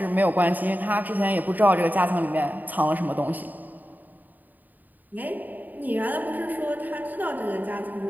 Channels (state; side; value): late; left; 0.086 ms